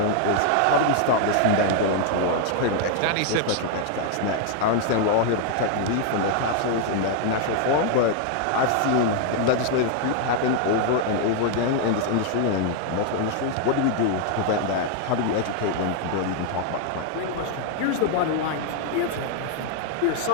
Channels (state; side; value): different; both; correlation 0.00